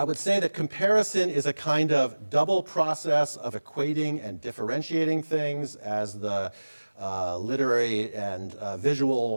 would say that comparison is a kind of double process of equating and differentiating things, as the literary and visual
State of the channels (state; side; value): inverted; both; correlation -1.00